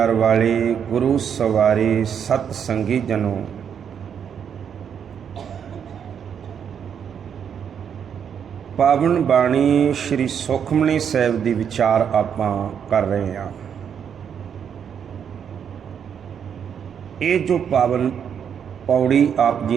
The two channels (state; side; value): quieter; left; 7.9 dB